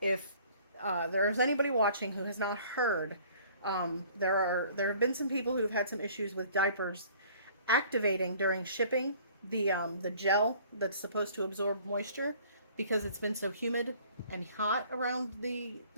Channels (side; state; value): both; inverted; correlation -0.53